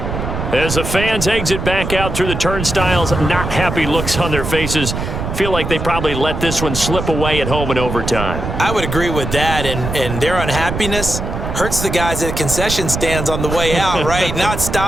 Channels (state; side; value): noise; right; rumble, 5 dB below the sound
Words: As the fans exit back out through the turnstiles, not happy looks on their faces. Feel like they probably let this one slip away at home in overtime. I would agree with that, and their unhappiness hurts the guys at concession stands on the way out, right? Not